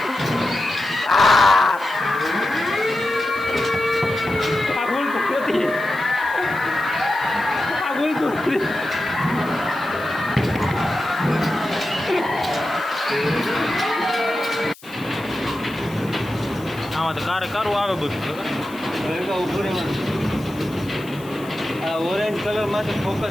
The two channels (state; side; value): noise; left; hiss, 22 dB below the sound